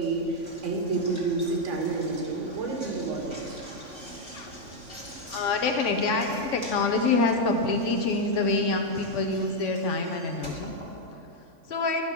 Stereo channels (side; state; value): left; late; 3.5 ms